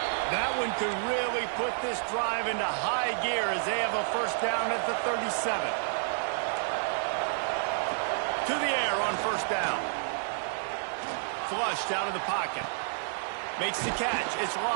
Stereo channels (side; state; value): left; silent; digital silence